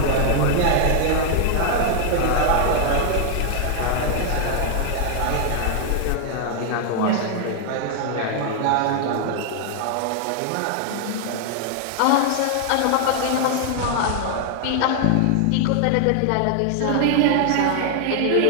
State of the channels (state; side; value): different; both; correlation 0.00